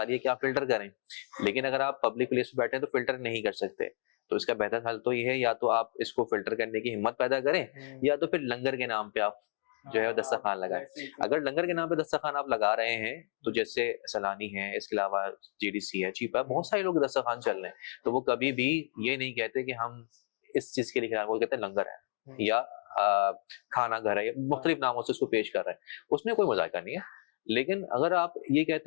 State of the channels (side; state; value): right; silent; digital silence